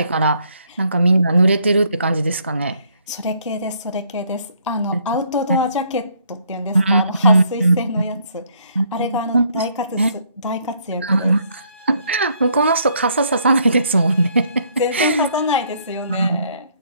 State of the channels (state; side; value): inverted; both; correlation -0.67